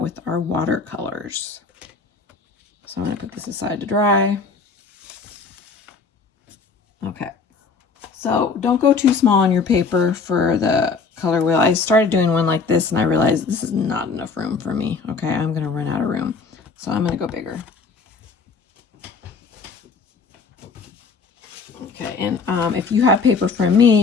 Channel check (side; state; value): right; quieter; 4.7 dB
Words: our watercolors. So I'm going to put this aside to dry. Okay, so don't go too small on your paper for the color wheel. I started doing one like this and I realized this is not enough room for me. Okay, I'm going to run out of room. So I'm going to go bigger. Okay, and if you have paper from me,